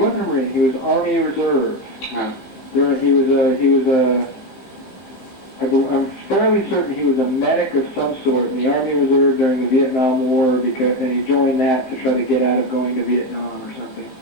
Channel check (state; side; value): late; right; 15 ms